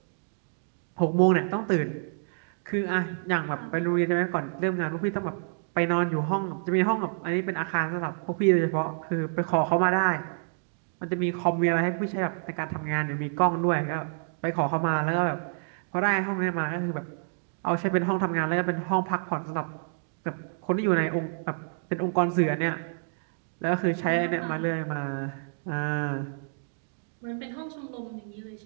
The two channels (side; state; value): left; silent; digital silence